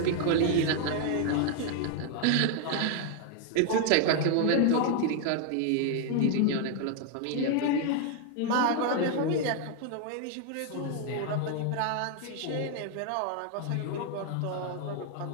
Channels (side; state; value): both; different; correlation 0.00